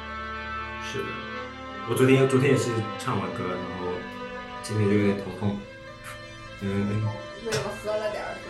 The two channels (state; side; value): identical; both; correlation 1.00